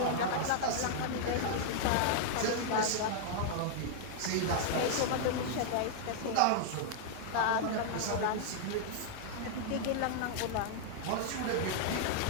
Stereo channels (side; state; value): both; different; correlation -0.01